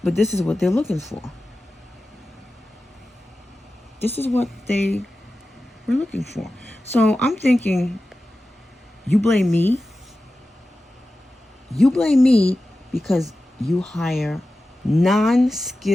But this is what they're looking for. This is what they were looking for. So I'm thinking, you blame me. You blame me because you hire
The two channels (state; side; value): normal; both; correlation 0.94